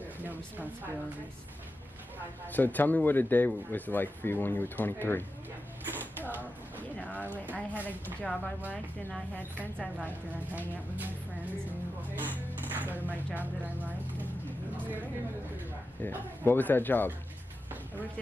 No responsibilities. So, tell me what a day was like for you when you were 23. Well, you know, I had a job I liked, and I had friends I liked, and I'd hang out with my friends and go to my job that I liked. And it was great. Yeah. What was that job? I worked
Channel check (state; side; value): normal; both; correlation 0.91